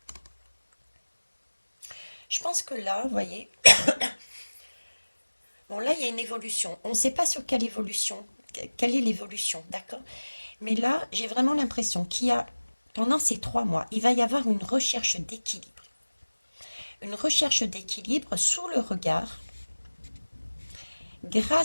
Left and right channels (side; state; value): both; inverted; correlation -1.00